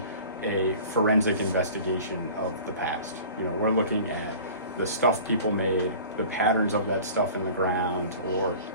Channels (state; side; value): inverted; both; correlation -0.42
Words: a forensic investigation of the past. You know, we're looking at the stuff people made, the patterns of that stuff in the ground, or